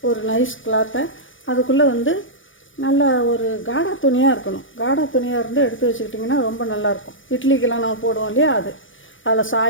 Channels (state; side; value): late; right; 0.57 ms